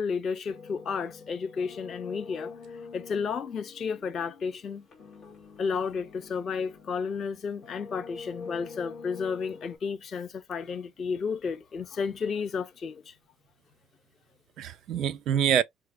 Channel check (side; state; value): both; normal; correlation 0.69